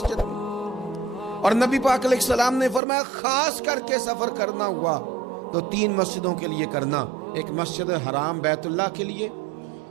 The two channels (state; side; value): drops out; left; at 2.8 s